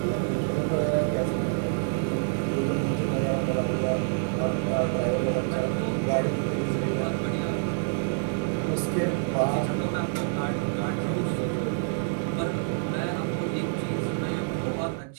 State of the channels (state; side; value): silent; left; 60 dB below the other